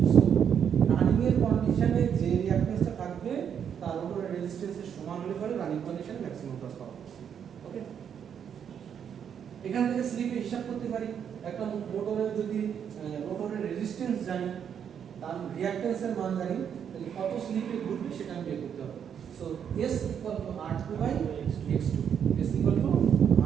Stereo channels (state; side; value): quieter; left; 8.2 dB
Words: সো রানিং এর কন্ডিশনে যে রিঅ্যাক্ট্যান্সটা থাকবে তার উপরে রেজিস্ট্যান্সের সমান হলে পরে রানিং কন্ডিশনে ম্যাক্সিমাম টর্ক পাবো। ওকে, এখান থেকে স্লিপে হিসাব করতে পারি, একটা মোটরের যদি মোটরের রেজিস্ট্যান্স জানি, তার রিঅ্যাক্ট্যান্সের মান জানি, তাহলে কত স্লিপে ঘুরবে সেটা আমি বের করতে হবে। So S equal to R2 by X2, S equal to